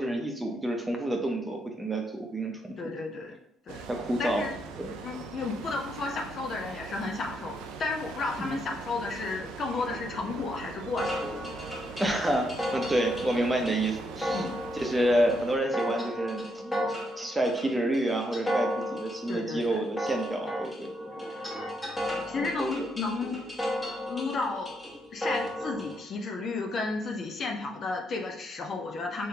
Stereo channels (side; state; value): both; normal; correlation 0.77